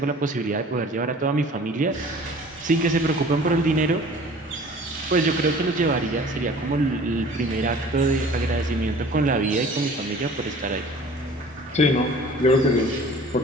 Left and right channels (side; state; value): both; normal; correlation 0.47